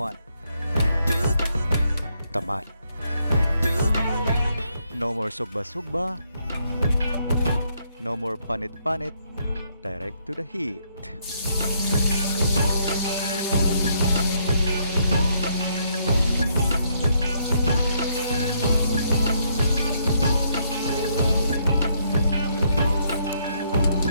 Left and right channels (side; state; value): both; inverted; correlation -0.73